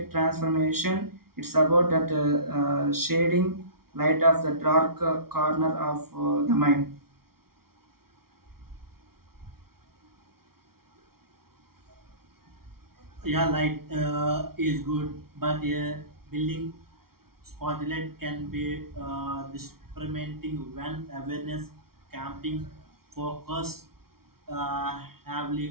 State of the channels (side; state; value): left; late; 0.94 ms